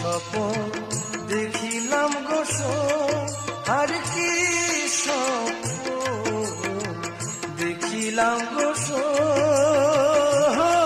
দেখিলাম গোস আর কি স্বপন দেখিলাম গোস,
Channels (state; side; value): identical; both; correlation 1.00